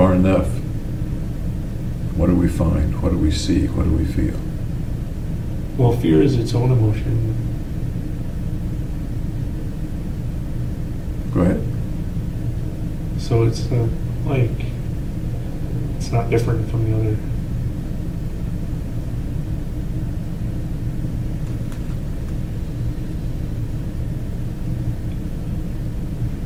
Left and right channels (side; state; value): both; identical; correlation 1.00